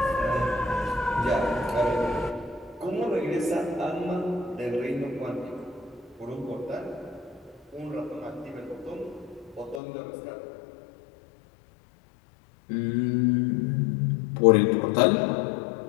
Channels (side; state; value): right; drops out; at 9.8 s